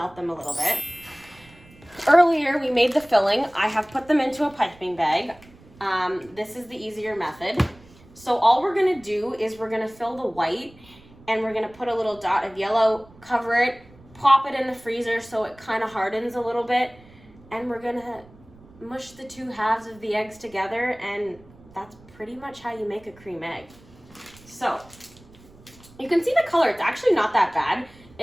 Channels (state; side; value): noise; right; rumble, 24 dB below the sound